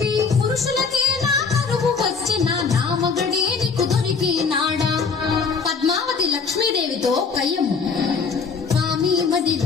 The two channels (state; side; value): quieter; right; 5.2 dB